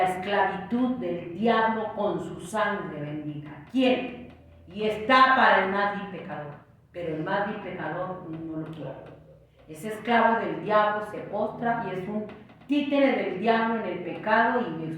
esclavitud del diablo con su sangre bendita? ¿Quién? Y está para el más vil pecador, pero el más vil pecador no lo quiere. Es esclavo del diablo, se postra y es un títere del diablo en el pecado, y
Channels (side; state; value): both; identical; correlation 1.00